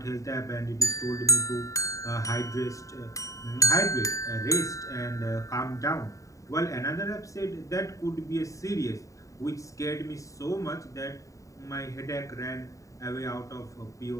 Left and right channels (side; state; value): right; late; 0.16 ms